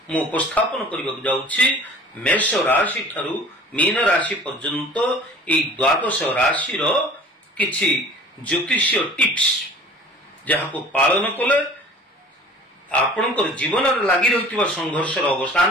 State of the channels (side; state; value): both; normal; correlation 0.46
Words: उपस्थापन करने जाऊँगी। मेष राशि ठारू मीन राशि पर्यंत ये द्वादश राशि किछि ज्योतिषीय टिप्स जहाँ को पालन कले आपणकर जीवन लगी रही संघर्ष